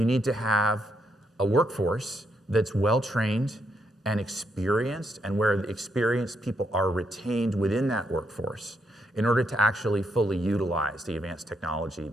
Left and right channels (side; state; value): both; normal; correlation 0.78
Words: need to have a workforce that's well-trained and experienced, and where the experienced people are retained within that workforce in order to actually fully utilize the advanced technology